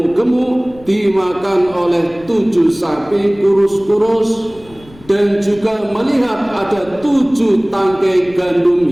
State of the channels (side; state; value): left; noise; rumble, 23 dB below the sound